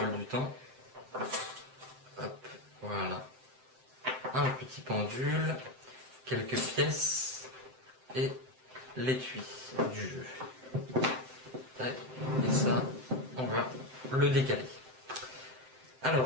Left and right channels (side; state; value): left; late; 7.7 ms